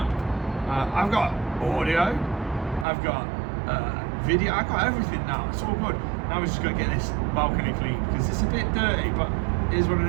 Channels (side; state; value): left; drops out; at 2.9 s